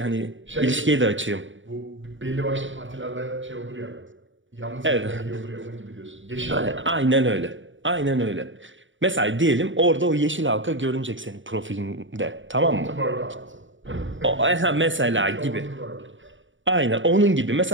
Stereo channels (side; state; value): left; late; 0.56 ms